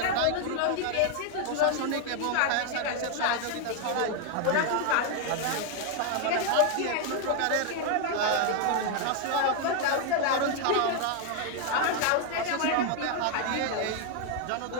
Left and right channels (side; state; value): both; different; correlation 0.01